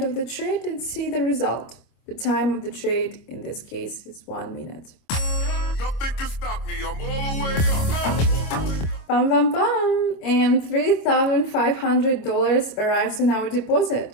of the trade and see the result. The time of the trade in this case is 1 minute. Nothing can stop me. I'm all the way up. Bam, bam, bam! And $3,500 arrives in our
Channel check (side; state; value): right; late; 26 ms